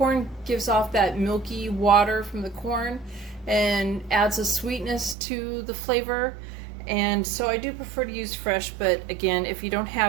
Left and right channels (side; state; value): left; drops out; at 5.2 s